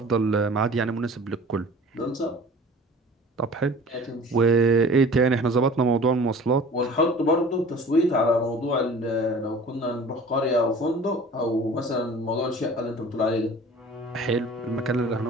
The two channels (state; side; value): normal; both; correlation 0.44